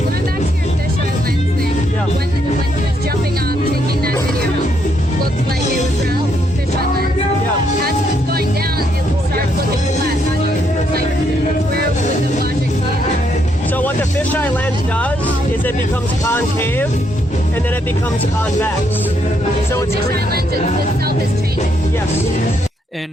back to your fisheye lens thing, when he was jumping off, taking that video, looked like it was round fisheye lens. As it was going down, it starts looking flat. How do you, like, where would the logic be in that? So what the fisheye lens does is it becomes concave, and then it becomes convex. So it's the fisheye lens itself is changing. Yes.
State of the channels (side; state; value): both; normal; correlation 0.75